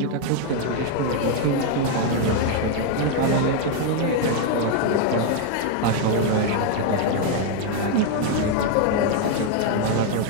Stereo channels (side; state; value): both; different; correlation 0.01